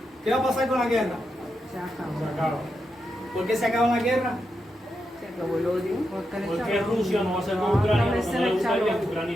¿Qué va a pasar con la guerra? Se acabó. Se acaba. ¿Por qué se acaba la guerra? Se acabó el odio. ¿Por qué Rusia no va a ser con Ucrania? Porque no le gustaría que Ucrania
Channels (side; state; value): both; normal; correlation 0.85